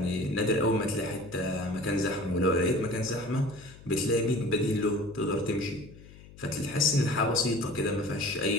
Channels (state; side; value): noise; left; hum, 20 dB below the sound